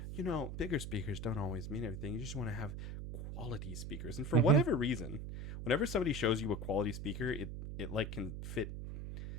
bigger speakers don't always mean everything. You just want to have quality speakers. And for Mhm. whatever reason, whenever somebody shows you a quality speaker, it like can fit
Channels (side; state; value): right; noise; hum, 6 dB below the sound